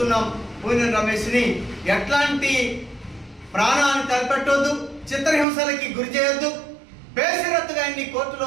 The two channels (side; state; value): left; drops out; at 5.5 s